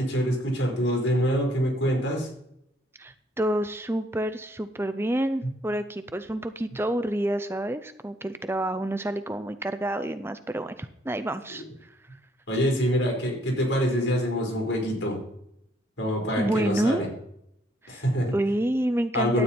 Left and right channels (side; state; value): both; normal; correlation 0.67